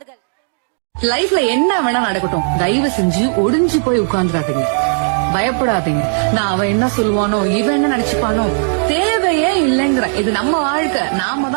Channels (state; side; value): silent; left; digital silence